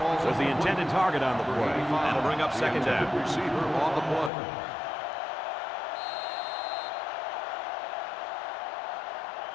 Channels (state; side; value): drops out; right; at 4.3 s